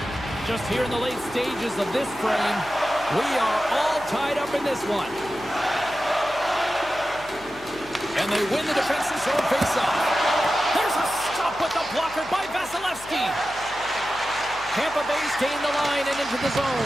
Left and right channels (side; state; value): left; noise; hum, 21 dB below the sound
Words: Just here in the late stages of this frame, we are all tied up in this one. And they win the defensive zone faceoff. There's a stop with the blocker by Vasilevsky. Tampa Bay's gained the line and into the